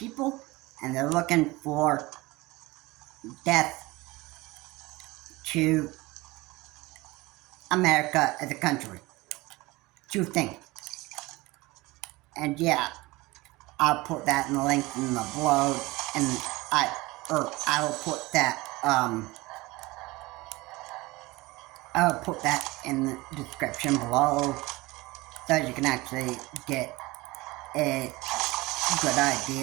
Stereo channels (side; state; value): left; quieter; 21.6 dB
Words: and they're looking for death to America as a country. Two things. And yeah, I'll put that in the link in the below, and I will put that I'll put that in the description below, so you can actually get a good